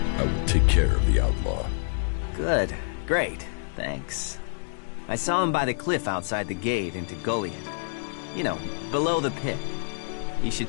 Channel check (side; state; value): right; silent; digital silence